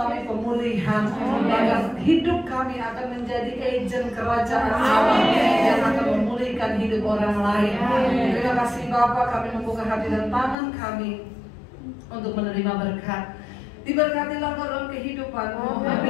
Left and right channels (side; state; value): right; drops out; at 10.6 s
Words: pemulihan. Bahkan hidup kami akan menjadi agen kerajaan Allah yang akan memulihkan hidup orang lain. Terima kasih Bapa, kami membuka hati dan tangan kami untuk menerima berkat. Diberkatilah dalam kehidupan-Mu,